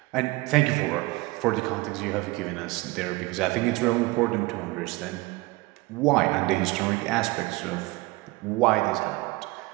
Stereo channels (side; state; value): left; quieter; 22.1 dB